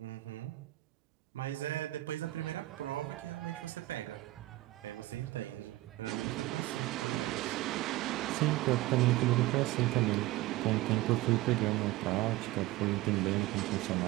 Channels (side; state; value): left; quieter; 17.8 dB